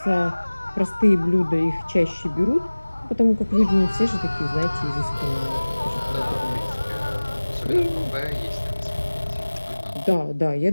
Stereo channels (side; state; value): both; inverted; correlation -1.00